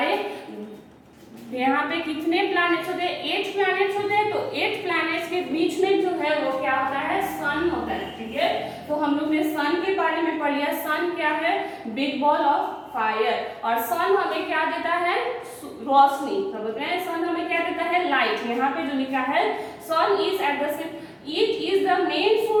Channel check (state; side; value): identical; both; correlation 1.00